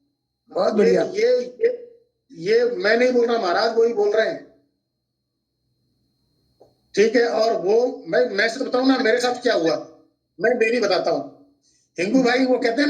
बहुत ये बढ़िया। ये मैं नहीं बोल रहा महाराज, वही बोल रहे हैं। ठीक है, और वो मैं सिर्फ बताऊं ना मेरे साथ क्या हुआ, मैं डेली बताता हूँ। हिंगू भाई वो कहते हैं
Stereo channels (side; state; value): both; identical; correlation 1.00